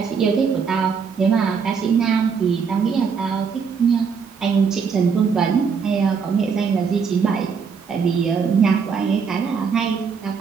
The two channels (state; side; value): quieter; left; 6.0 dB